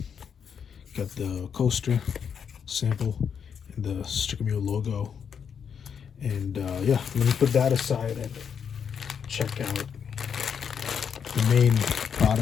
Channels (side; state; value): right; quieter; 7.2 dB